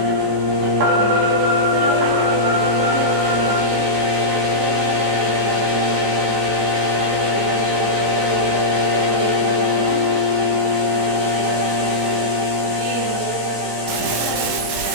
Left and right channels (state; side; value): late; left; 18 ms